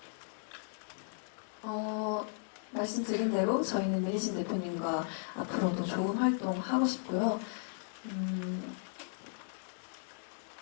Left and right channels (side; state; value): right; silent; digital silence